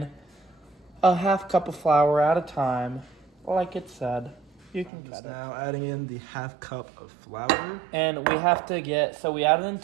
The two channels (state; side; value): drops out; left; at 4.9 s